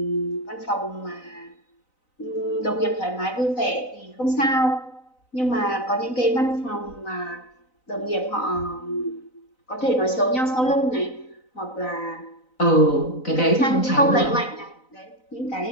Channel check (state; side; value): late; right; 4.0 ms